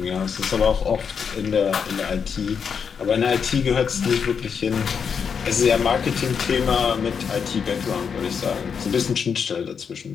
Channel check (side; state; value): right; quieter; 6.6 dB